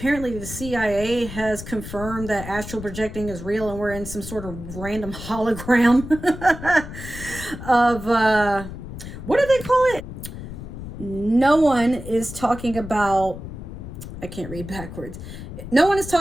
the CIA has confirmed that astral projecting is real, and we're in some sort of random hologram of, what do they call it? No one is talking about, I can't read backwards. No one is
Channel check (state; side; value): noise; left; rumble, 11 dB below the sound